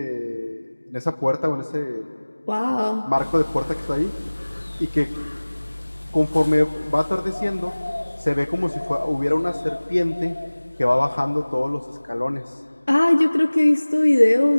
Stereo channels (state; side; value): inverted; both; correlation -1.00